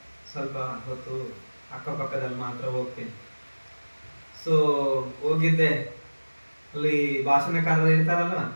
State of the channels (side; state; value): both; inverted; correlation -1.00